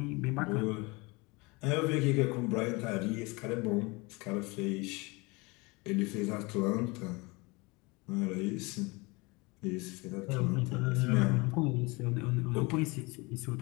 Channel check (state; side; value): quieter; right; 25.9 dB